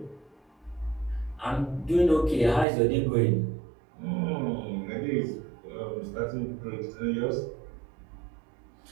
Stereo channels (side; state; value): left; drops out; at 2.7 s